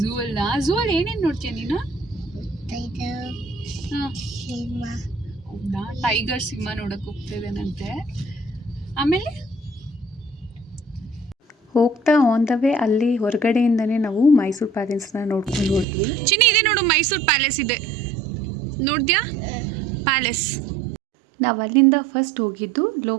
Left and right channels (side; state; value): left; drops out; at 15.9 s